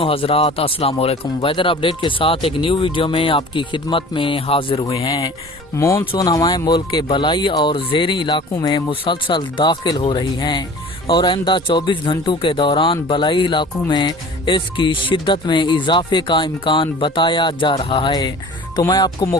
हज़रात, अस्सलाम वालेकुम। वेदर अपडेट के साथ एक न्यू वीडियो में आपकी खिदमत में हाजिर हुए हैं। मानसून हवाएं मुल्क के बलाई और ज़ेरी इलाकों में मुसलसल दाखिल हो रही हैं और आइंदा 24 घंटों के दौरान बलाई इलाकों में इसकी शिद्दत में इजाफे का इम्कान बताया जा रहा है। तो मैं आपको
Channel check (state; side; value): normal; both; correlation 0.43